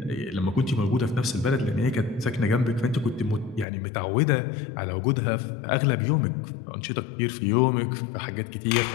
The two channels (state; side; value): drops out; right; at 3.7 s